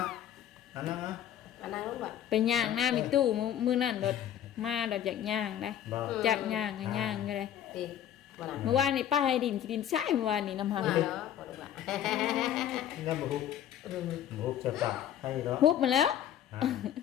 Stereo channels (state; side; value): quieter; right; 10.6 dB